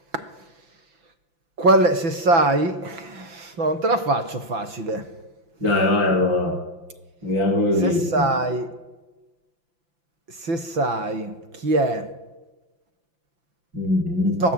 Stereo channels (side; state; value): left; late; 6.0 ms